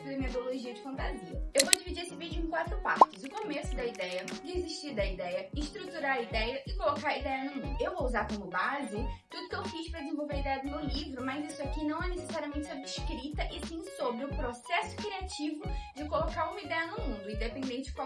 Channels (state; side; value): identical; both; correlation 1.00